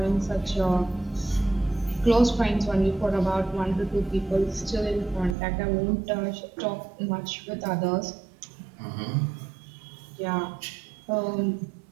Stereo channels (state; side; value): drops out; left; at 5.4 s